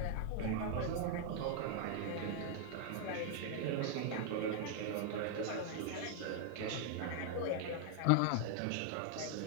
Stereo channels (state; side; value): different; both; correlation 0.00